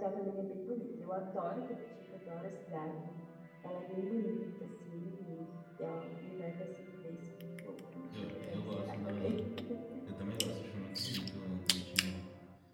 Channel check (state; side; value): identical; both; correlation 1.00